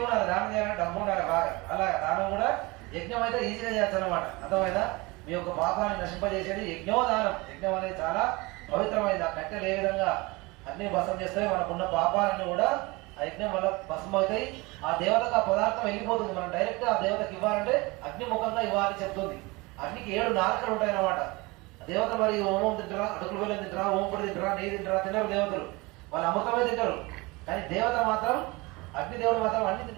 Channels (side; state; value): left; quieter; 24.2 dB